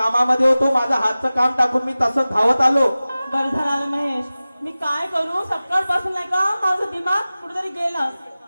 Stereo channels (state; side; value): inverted; both; correlation -0.97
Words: होतो, माझं हातचं काम टाकून मी तसंच धावत आलो. बरं झालं महेश, मी काय करू? सकाळपासून नाही का माझं दिमाग कुठेतरी गेलं.